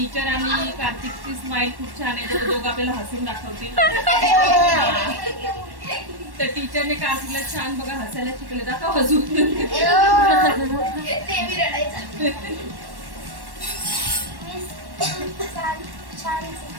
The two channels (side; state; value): left; late; 1.1 ms